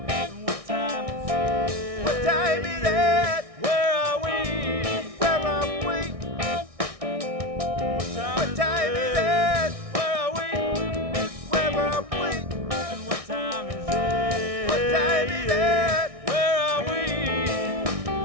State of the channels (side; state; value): left; late; 1.6 ms